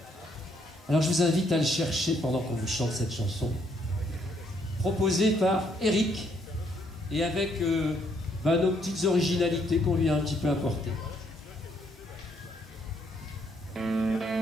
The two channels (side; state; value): both; normal; correlation 0.70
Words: Alors je vous invite à le chercher pendant qu'on vous chante cette chanson, proposée par Eric, et avec nos petites originalités qu'on lui a un petit peu apportées.